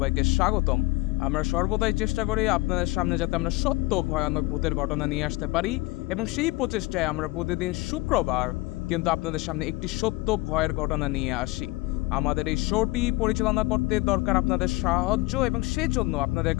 স্বাগতম। আমরা সর্বদাই চেষ্টা করি আপনাদের সামনে যাতে আমরা সত্য ভয়ানক ভূতের ঘটনা নিয়ে আসতে পারি, এবং সেই প্রচেষ্টায় আমরা প্রতিদিন শুক্রবার কিন্তু আপনাদের সামনে একটি সত্য ভয়ের ঘটনা নিয়ে আসি। আমাদের এই শোটি পরিচালনা করতে দরকার আপনাদের সাহায্য, এবং সেজন্য আপনাদের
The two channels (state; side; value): quieter; right; 21.8 dB